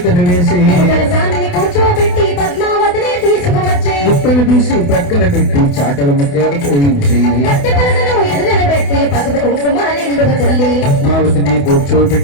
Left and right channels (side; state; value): right; late; 28 ms